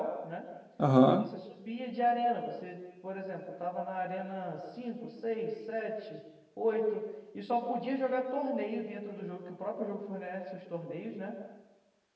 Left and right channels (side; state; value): both; identical; correlation 1.00